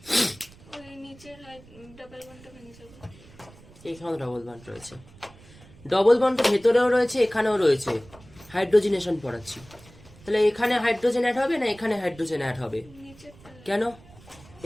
ওই নিচের ডাবল বন্ডটা ভেঙে যাবে। এখানেও ডবল বন্ড রয়েছে, ডবল বন্ড ভেতরেও রয়েছে, এখানেও রয়েছে। হাইড্রোজিনেশন পড়াচ্ছি, তাহলে এখানে হাইড্রোজেন অ্যাড হবে না এখানে হাইড্রোজেন অ্যাড হবে? কেন?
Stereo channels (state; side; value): noise; right; rumble, 23 dB below the sound